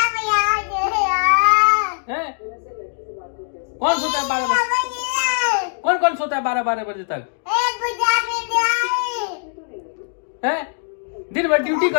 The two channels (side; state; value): right; silent; 65 dB below the other